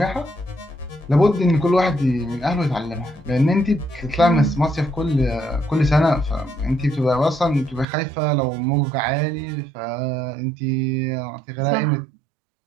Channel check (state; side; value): drops out; left; at 7.9 s